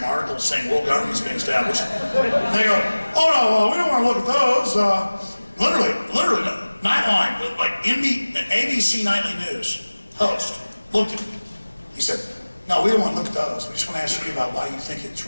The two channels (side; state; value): both; inverted; correlation -1.00